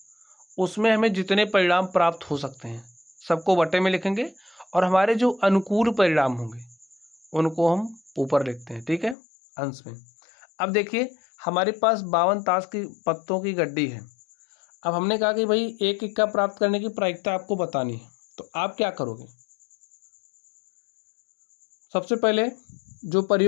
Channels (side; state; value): right; drops out; at 9.2 s